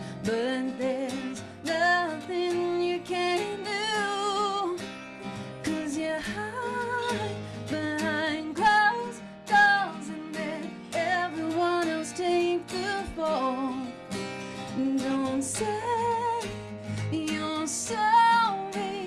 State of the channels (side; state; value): both; identical; correlation 1.00